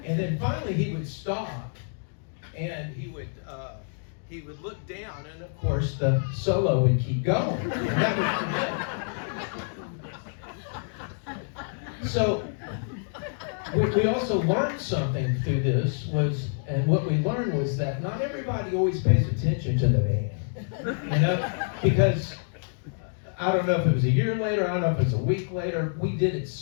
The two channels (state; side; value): silent; right; digital silence